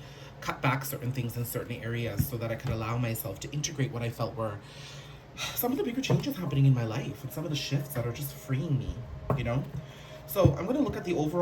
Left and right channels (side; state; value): both; identical; correlation 1.00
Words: cut back certain things in certain areas so that I could allow myself to integrate what I felt were some of the bigger changes happening in my life and some of the shifts that are just freeing me, you know? So I'm going to look at the